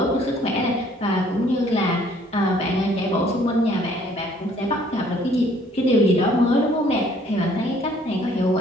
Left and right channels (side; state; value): both; normal; correlation 0.60